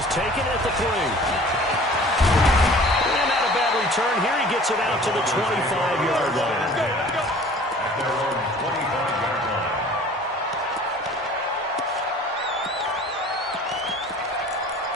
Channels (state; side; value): normal; both; correlation 0.47